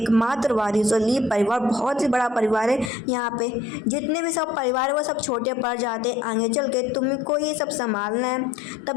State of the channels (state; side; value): drops out; right; at 2.9 s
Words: वारिस हो। ली परिवार बहुत ही बड़ा परिवार है, यहाँ पे जितने भी सब परिवार है वो सब छोटे पड़ जाते हैं, आगे चल के तुमको ये सब संभालना है।